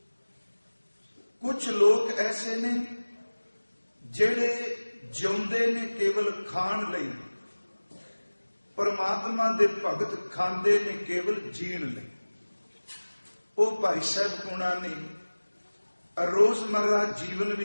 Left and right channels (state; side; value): inverted; both; correlation -1.00